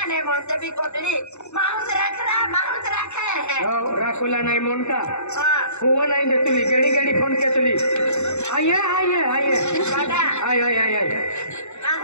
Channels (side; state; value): right; late; 0.82 ms